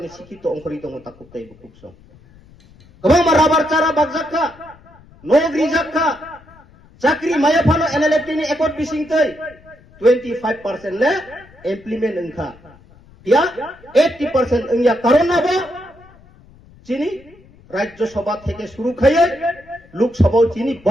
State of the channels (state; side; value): noise; left; rumble, 26 dB below the sound